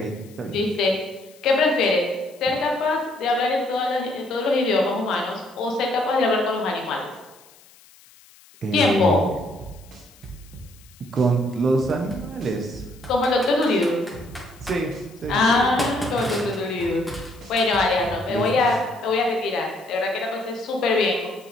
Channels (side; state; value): left; noise; hiss, 26 dB below the sound